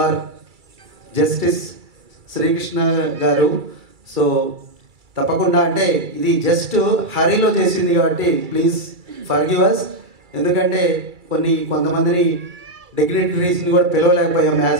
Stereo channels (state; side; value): late; left; 2.3 ms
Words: our justice Srikrishna garu. So తప్పకుండా, అంటే ఇది జస్ట్ హరీలో చేసింది కాబట్టి ప్లీజ్ ఫర్గివ్ us, ఎందుకంటే కొంతమందిని డిగ్నిటరీస్ని కూడా పిలవలేకపోయాం